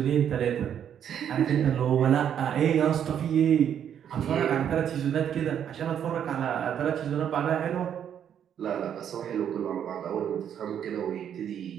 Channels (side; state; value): left; quieter; 9.1 dB